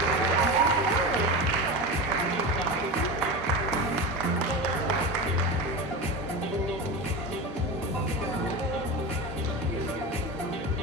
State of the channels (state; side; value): normal; both; correlation 0.24